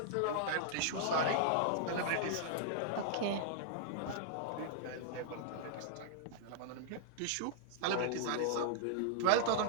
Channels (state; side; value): different; both; correlation -0.01